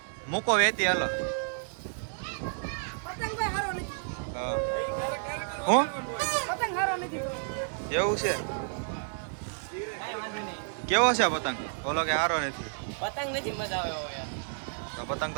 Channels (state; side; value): silent; left; digital silence